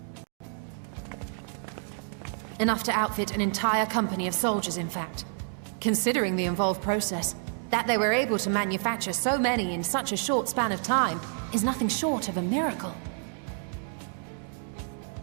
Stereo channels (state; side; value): silent; left; 59 dB below the other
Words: Enough to outfit an entire company of soldiers, in fact. Considering the involved process, that they were able to manufacture so many in such a short span of time is nothing short of a miracle.